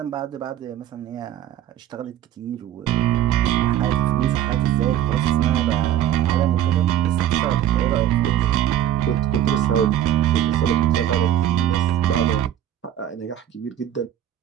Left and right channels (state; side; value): quieter; left; 11.4 dB